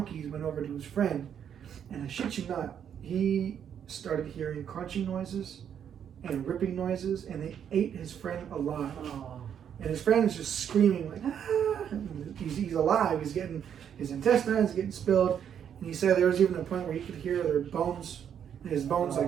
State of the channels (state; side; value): quieter; left; 8.7 dB